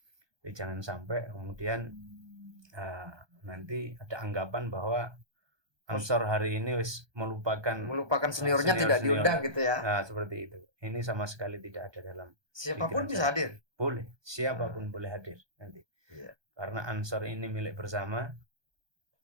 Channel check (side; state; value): left; late; 1.2 ms